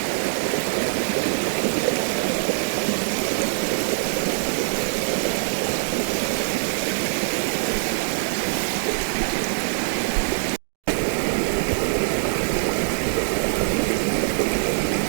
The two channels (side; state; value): left; silent; digital silence